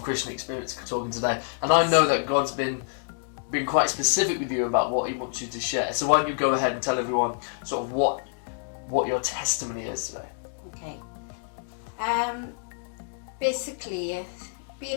Christian experience talking today. And I know that God's been quite specific with you about what he wants you to share. So why don't you go ahead and tell everyone sort of what your testimony is today? Okay. Basically,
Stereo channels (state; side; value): silent; right; digital silence